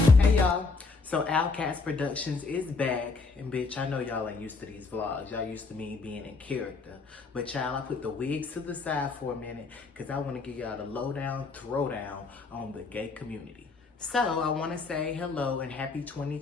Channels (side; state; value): right; quieter; 4.1 dB